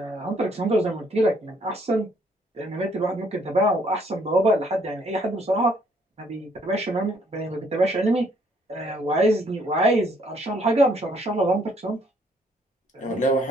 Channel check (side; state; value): both; normal; correlation 0.66